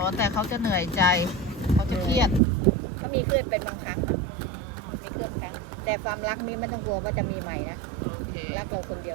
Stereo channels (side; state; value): left; drops out; at 2.4 s